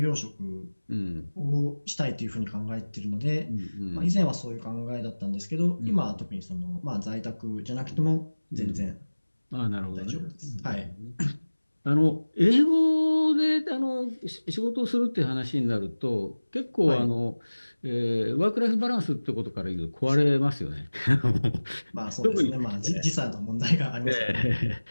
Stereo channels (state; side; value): inverted; both; correlation -1.00